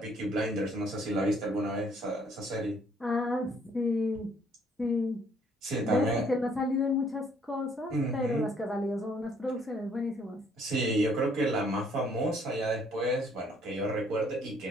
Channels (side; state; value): both; normal; correlation 0.64